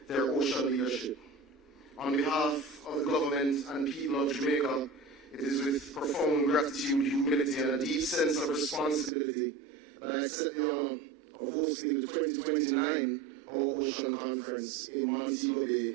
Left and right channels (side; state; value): left; drops out; at 9.1 s